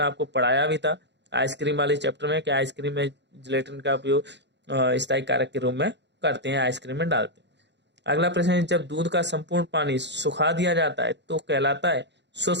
आपको पढ़ाया भी था आइसक्रीम वाले चैप्टर में कि आइसक्रीम में जिलेटिन का उपयोग स्थायी कारक के रूप में करते हैं, आइसक्रीम में डालते हैं। अगला प्रश्न है, जब दूध का संपूर्ण पानी सुखा दिया जाता है तो कहलाता है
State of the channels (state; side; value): late; left; 0.51 ms